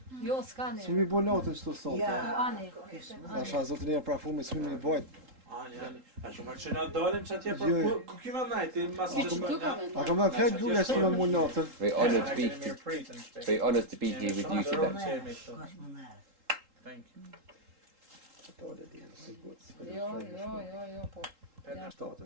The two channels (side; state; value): left; late; 3.8 ms